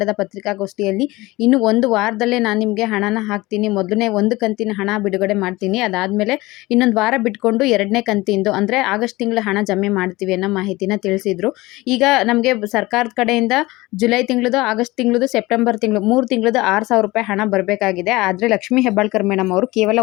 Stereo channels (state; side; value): quieter; right; 20.5 dB